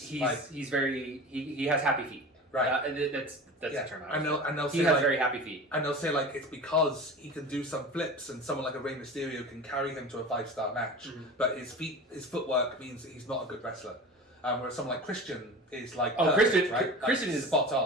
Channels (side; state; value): both; normal; correlation 0.34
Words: He has happy feet. Right. That's the term. And they'll say he has very happy feet. And they'll say like it's because he can do some flips, and someone like a Rey Mysterio can carry him to a 5-star match. But his footwork means that he's not a good wrestler. Whereas someone like Christian is like Christian, right? Christian is spot